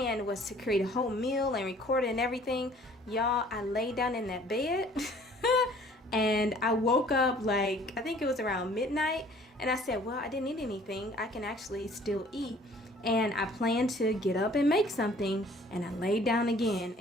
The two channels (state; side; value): normal; both; correlation 0.54